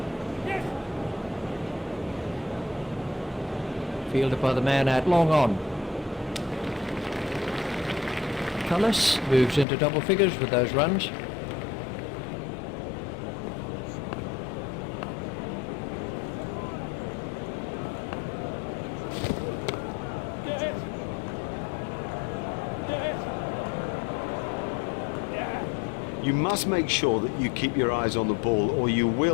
Fielded by the man out long on. Cullis moves into double figures with those runs. You must make sure that you keep your eyes on the ball or you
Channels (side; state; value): right; drops out; at 9.7 s